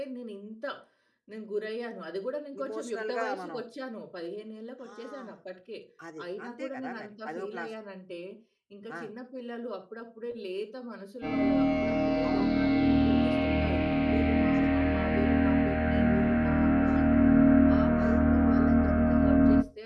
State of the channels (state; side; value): identical; both; correlation 1.00